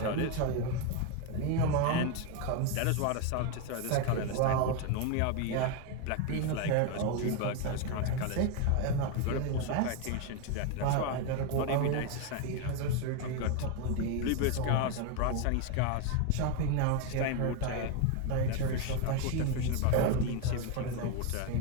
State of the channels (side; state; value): both; different; correlation 0.02